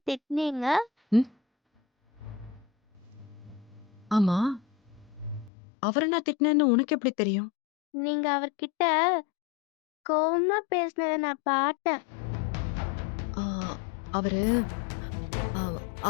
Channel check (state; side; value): drops out; right; at 5.5 s